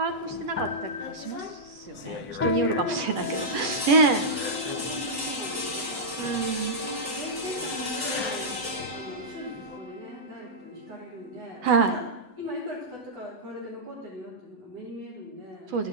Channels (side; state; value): left; late; 8.0 ms